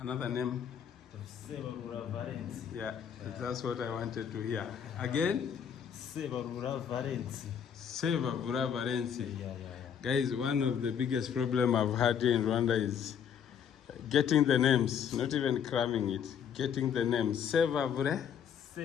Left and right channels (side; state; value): right; quieter; 8.1 dB